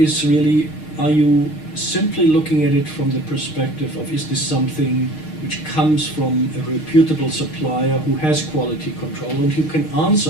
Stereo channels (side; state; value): right; late; 6.5 ms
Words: really, are you simply looking at it from the perspective of, is this something which comes from a reputable supplier who has quality control and who can